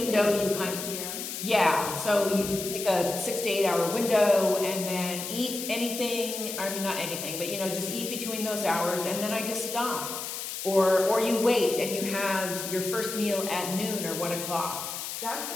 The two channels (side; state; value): left; noise; hiss, 6 dB below the sound